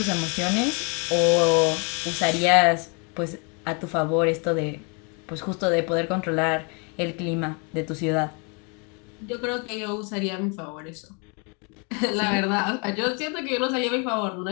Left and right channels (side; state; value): right; quieter; 34.4 dB